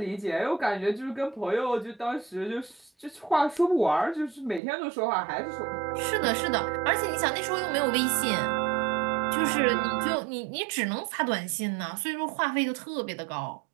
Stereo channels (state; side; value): drops out; left; at 4.6 s